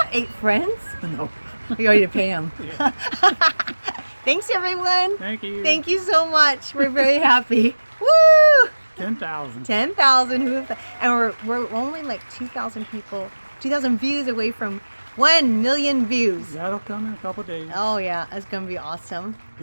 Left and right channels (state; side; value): inverted; both; correlation -1.00